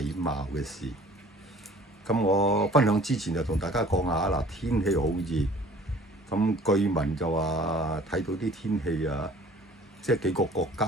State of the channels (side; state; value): both; normal; correlation 0.51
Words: 貌嘅事。咁我分享之前就同大家講下嗱，天氣好熱。咁據聞就話睇到啲天氣啊，即係幾個國家